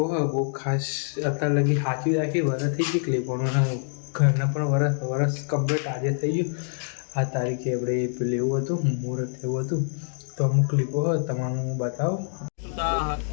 હોય બહુ ખાસ અત્યારે લગી સાચવી રાખી. વરસ થઈ ગઈ ક્લિપોનું, ઘરના પણ વરસ કમ્પ્લીટ આજે થઈ ગયું. આ તારીખે આપણે પેલું એવું હતું મુહૂર્ત એવું હતું. તો અમુક ક્લિપો હોય તમારું હું બતાવું.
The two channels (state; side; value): silent; right; 61 dB below the other